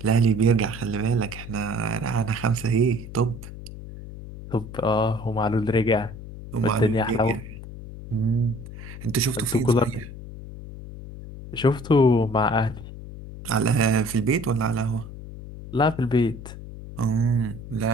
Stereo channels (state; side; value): noise; left; hum, 12 dB below the sound